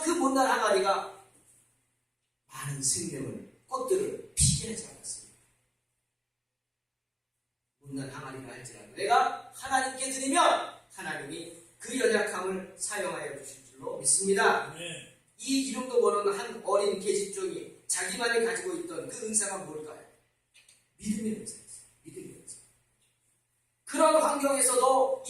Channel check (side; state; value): both; identical; correlation 1.00